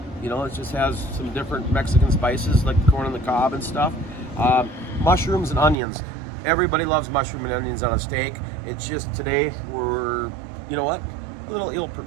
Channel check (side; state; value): left; drops out; at 5.8 s